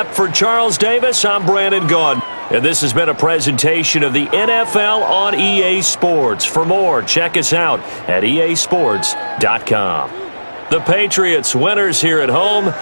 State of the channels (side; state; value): both; inverted; correlation -1.00